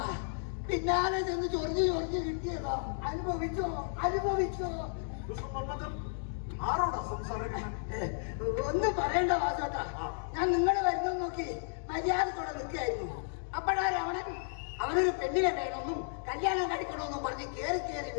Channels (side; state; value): right; silent; digital silence